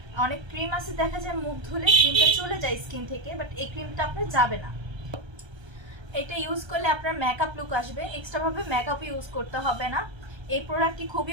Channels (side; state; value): left; late; 1.3 ms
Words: অনেক ক্রিম আছে দেখা যায় মুখ ধুলে ক্রিমটা চলে যায় স্কিন থেকে, বাট এই ক্রিমটা আপনার যাবে না। এটা ইউজ করলে আপনার মেকআপ লুক আসবে, এক্সট্রাভাবে মেকআপ ইউজ করতে হবে না। এই প্রোডাক্টটি